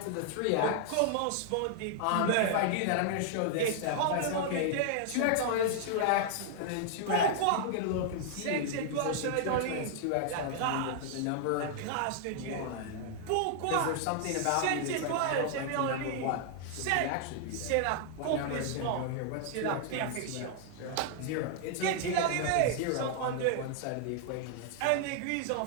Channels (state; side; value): different; both; correlation -0.01